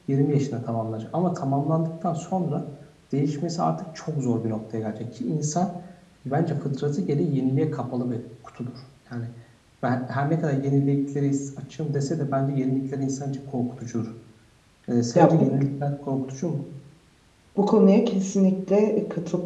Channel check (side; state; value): both; identical; correlation 1.00